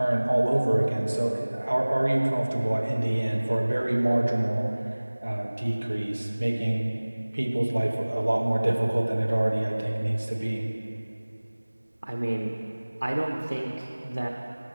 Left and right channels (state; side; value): inverted; both; correlation -1.00